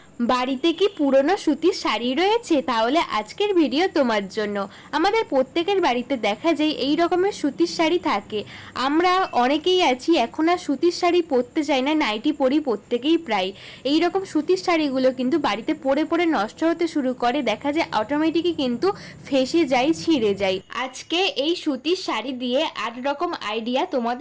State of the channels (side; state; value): both; identical; correlation 1.00